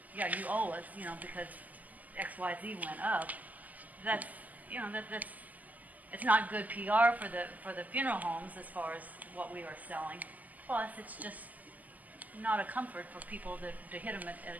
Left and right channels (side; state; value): left; late; 0.080 ms